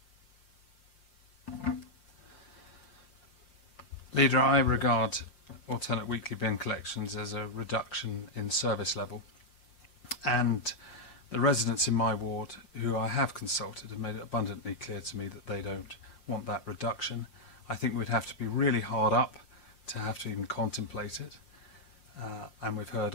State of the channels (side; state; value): right; late; 5.7 ms